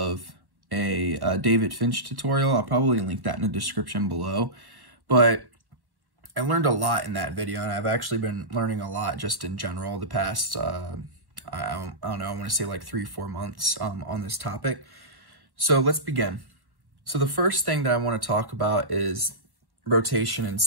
a David Finch tutorial. I'll probably link that in the description below, but I learned a lot in that video, and I've actually been learning a lot just in general the past, I don't know, I want to say like 3-4 months on this topic. So let's begin. So the first thing that I want to talk about is rotation in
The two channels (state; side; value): late; left; 1.1 ms